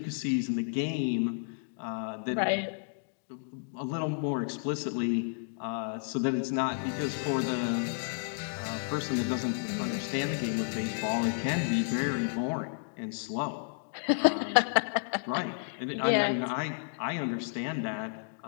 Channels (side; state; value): right; silent; digital silence